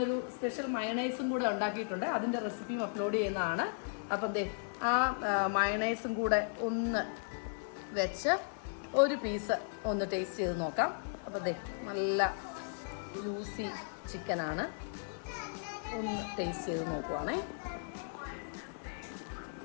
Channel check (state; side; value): silent; right; digital silence